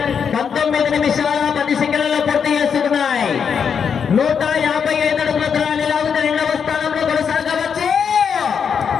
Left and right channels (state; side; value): quieter; right; 6.9 dB